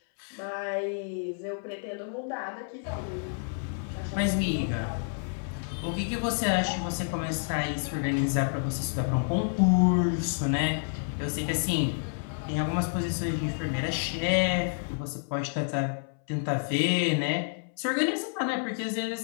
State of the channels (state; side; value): silent; right; 58 dB below the other